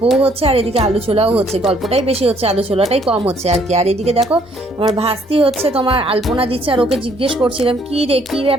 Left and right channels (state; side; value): normal; both; correlation 0.65